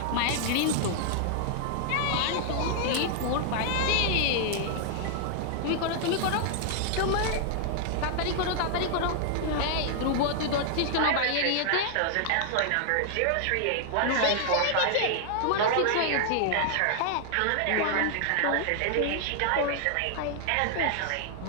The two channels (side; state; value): both; different; correlation -0.01